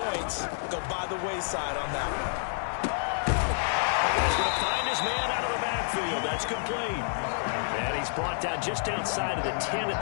go by the wayside on that one. And he's going to find his man out of the backfield. That's complete. And he's brought down just outside of the 10 at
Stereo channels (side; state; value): right; silent; digital silence